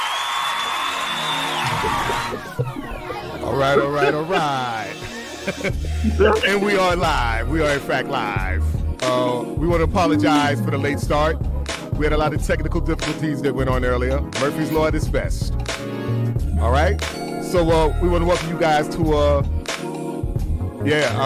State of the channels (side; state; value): both; identical; correlation 1.00